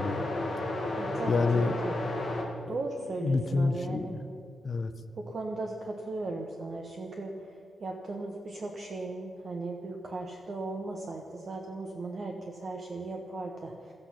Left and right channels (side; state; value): both; normal; correlation 0.86